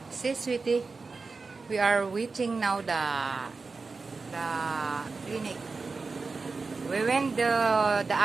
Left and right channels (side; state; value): left; quieter; 4.2 dB